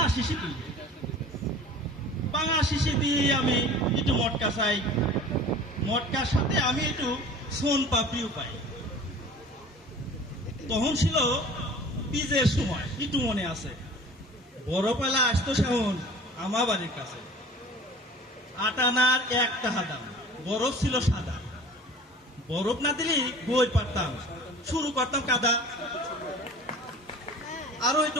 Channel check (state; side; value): normal; both; correlation 0.43